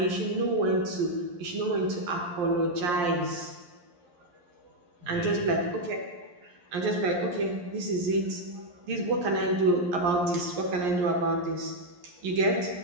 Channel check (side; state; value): left; late; 11 ms